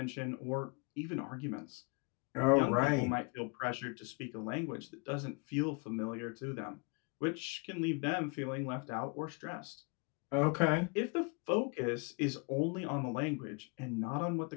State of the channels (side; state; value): right; quieter; 31.8 dB